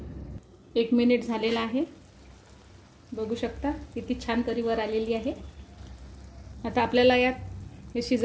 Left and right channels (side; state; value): both; identical; correlation 1.00